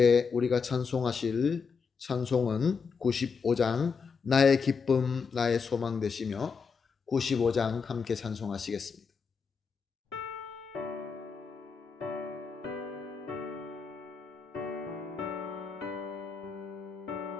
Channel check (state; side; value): quieter; right; 5.5 dB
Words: 우리가 찬송하실 찬송은 95장 나의 기쁨 나의 소망 되시며 95장 함께 찬송하시겠습니다.